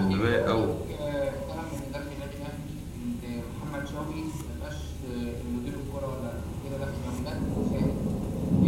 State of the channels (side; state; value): both; identical; correlation 1.00